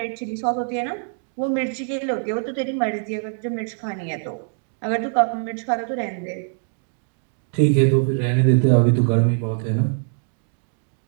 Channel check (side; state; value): left; silent; 62 dB below the other